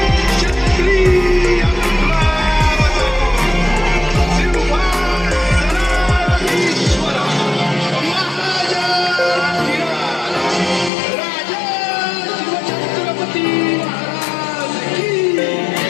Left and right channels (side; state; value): right; drops out; at 10.9 s